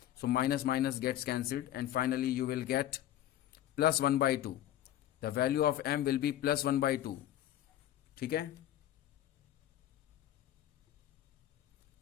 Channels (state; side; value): quieter; right; 12.5 dB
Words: So minus minus gets cancelled and finally you will get +1/2. The value of m will be +1/2. ठीक है,